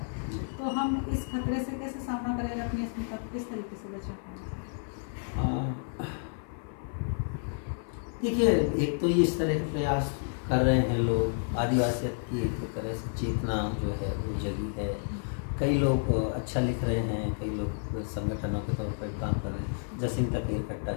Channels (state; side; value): silent; right; 57 dB below the other